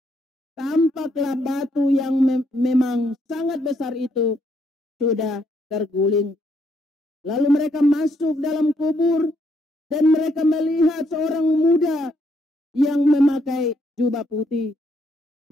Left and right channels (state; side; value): normal; both; correlation 0.73